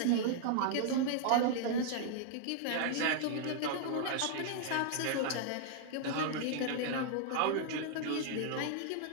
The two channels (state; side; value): different; both; correlation -0.01